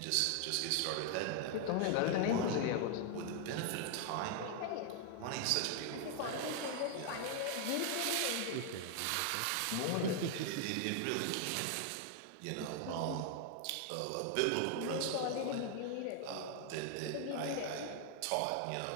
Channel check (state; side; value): different; both; correlation 0.00